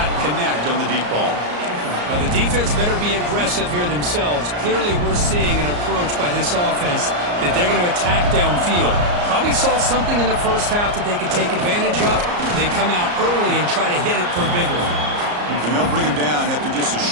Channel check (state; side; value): late; left; 34 ms